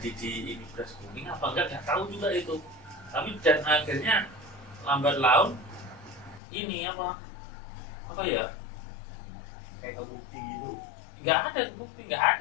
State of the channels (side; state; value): right; drops out; at 6.4 s